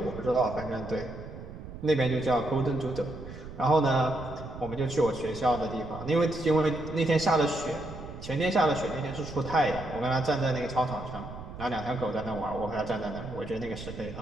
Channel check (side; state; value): right; noise; rumble, 12 dB below the sound